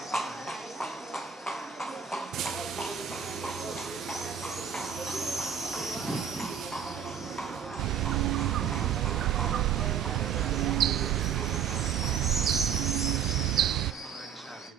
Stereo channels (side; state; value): left; quieter; 7.8 dB